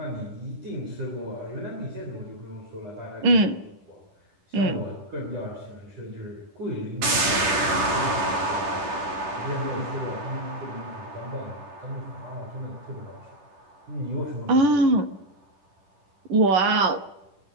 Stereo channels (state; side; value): late; left; 10 ms